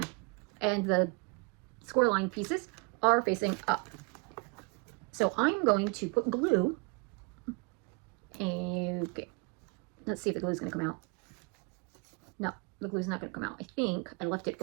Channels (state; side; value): quieter; left; 32.2 dB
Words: and the score line pieces are facing up. So I'm going to put glue. Okay, let's see if the glue is going to come out. No, the glue is not going to come out. I think I left it